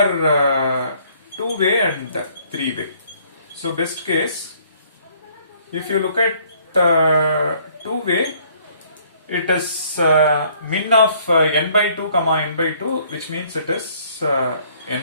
two-way and three-way. So best case, if you look at two-way, it is min of n by 2 comma n by 2, which means it is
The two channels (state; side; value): inverted; both; correlation -0.61